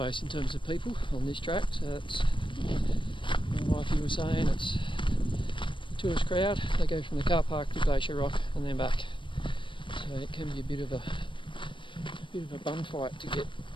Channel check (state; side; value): late; right; 0.24 ms